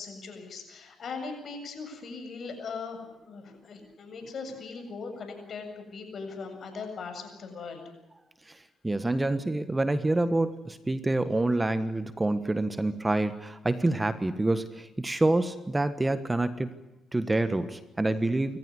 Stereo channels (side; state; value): both; normal; correlation 0.96